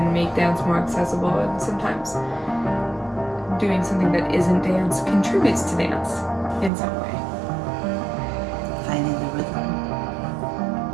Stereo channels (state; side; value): drops out; left; at 6.7 s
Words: make dance more accessible, and sometimes doing something that isn't dance contributes to dance in some way. Finding the rhythm